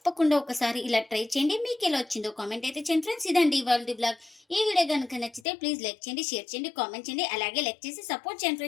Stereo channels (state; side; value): drops out; right; at 5.4 s